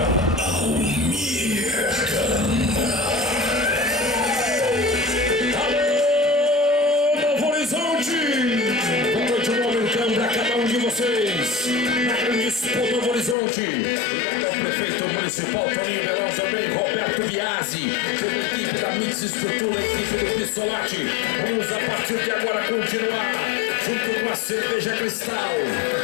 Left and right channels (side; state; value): right; drops out; at 13.4 s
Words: grande disputa Novo Horizonte, o prefeito municipal Toninho Belão, também Roberto Biasi, toda a equipe da Mix Estrutura, a equipe do Pissolati. Vamos a partir de agora continuar junto com a Cerveja Cristal e